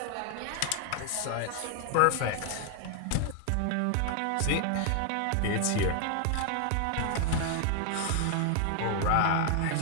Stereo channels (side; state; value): both; different; correlation 0.00